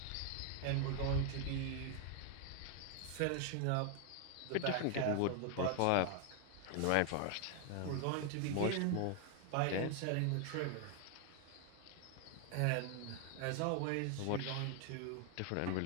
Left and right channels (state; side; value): different; both; correlation 0.01